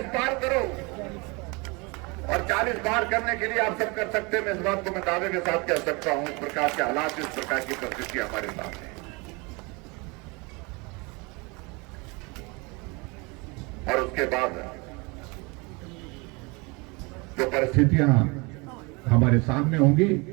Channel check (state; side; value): quieter; left; 27.9 dB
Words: पार करो, और 40 पार करने के लिए आप सब कर सकते हैं। मैं इस बात को मैं दावे के साथ कह सकता हूं, इस प्रकार के हालात, इस प्रकार की परिस्थिति हमारे सामने है। और उसके बाद जो परिस्थितियां हमारे सामने होंगी